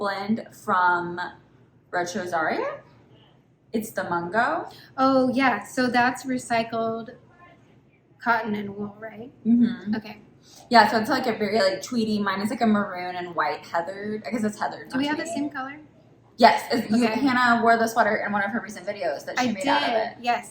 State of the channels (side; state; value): both; identical; correlation 1.00